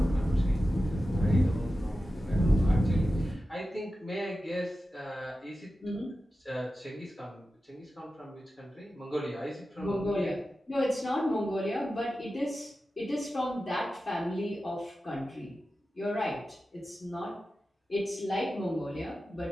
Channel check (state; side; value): normal; both; correlation 0.93